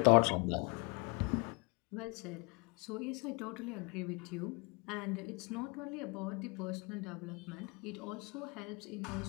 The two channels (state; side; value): quieter; right; 30.9 dB